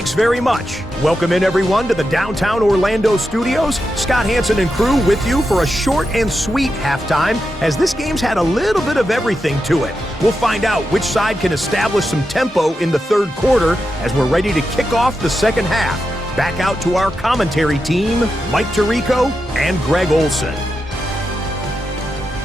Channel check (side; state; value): both; normal; correlation 0.88